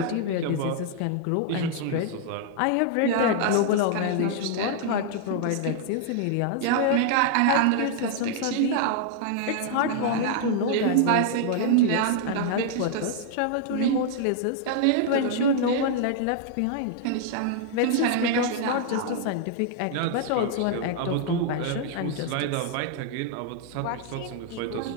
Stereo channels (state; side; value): different; both; correlation 0.00